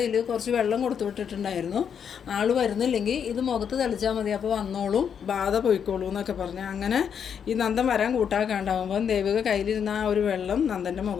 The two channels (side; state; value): right; quieter; 7.7 dB